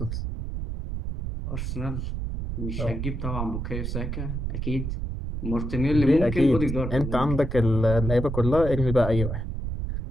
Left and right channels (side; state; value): right; noise; rumble, 4 dB below the sound